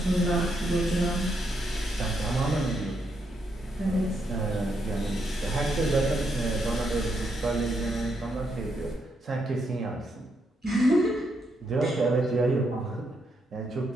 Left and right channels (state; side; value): normal; both; correlation 0.79